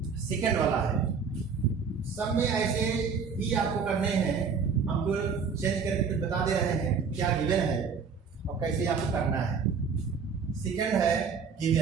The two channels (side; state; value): left; quieter; 5.7 dB